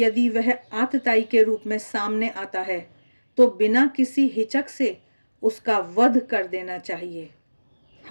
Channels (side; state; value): both; inverted; correlation -1.00